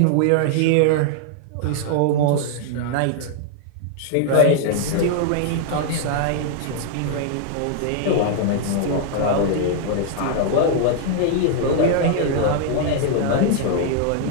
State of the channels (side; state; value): both; different; correlation -0.01